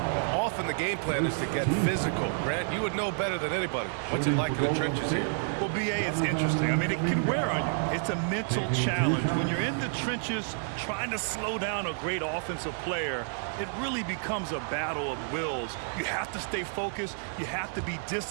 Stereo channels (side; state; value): left; silent; digital silence